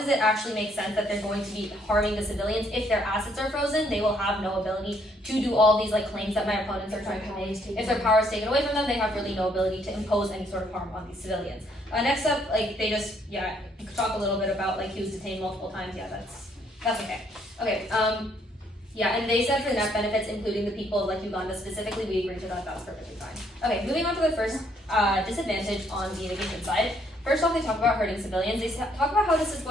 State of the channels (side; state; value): both; normal; correlation 0.68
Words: it actually make sense that they're going to be harming the civilians? If their assets are frozen, they will have no ability to do all these like claims that my opponents are trying to make. If their power is taken away from them, they have really no ability to impose any sort of harm on these civilians. Next up, like they just talk a little bit about like he was detained multiple times. Yeah, that's okay. Okay. Yeah, and they said for net benefits, including the people of like Uganda specifically, we agreed to that. That was perfectly fine. Okay, moving on to the first disadvantage on the immigration side. First off, they talk about hurting civilians. They talk about how this is